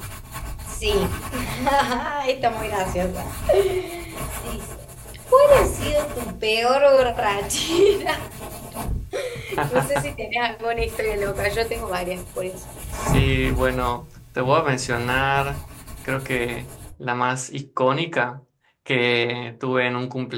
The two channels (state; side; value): identical; both; correlation 1.00